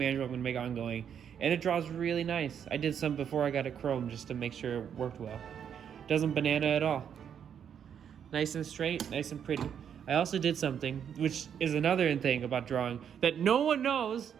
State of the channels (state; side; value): quieter; left; 8.3 dB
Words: I'm gonna make ongoing, and it draws really nice. I did some before I got it chrome just to make sure it worked well. Doesn't banana at all. Nice and straight, nice and pretty. I also did something, which is another thing about drawing that no one knows.